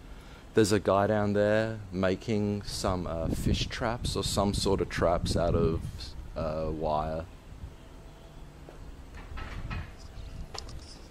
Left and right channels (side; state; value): both; identical; correlation 1.00